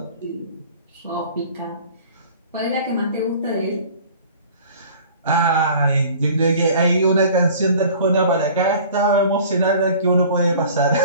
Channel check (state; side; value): inverted; both; correlation -0.46